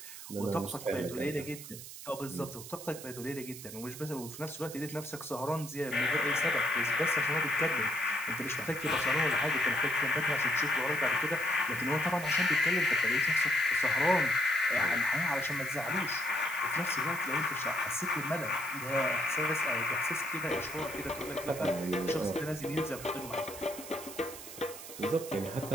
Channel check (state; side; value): noise; right; hiss, 12 dB below the sound